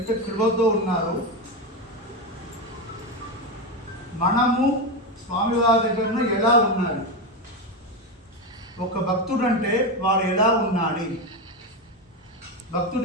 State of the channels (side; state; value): both; normal; correlation 0.13